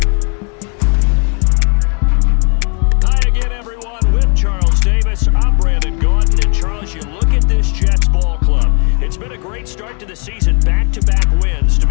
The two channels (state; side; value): quieter; right; 38.6 dB